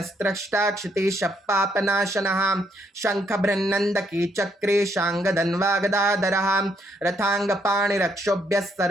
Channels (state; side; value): normal; both; correlation 0.72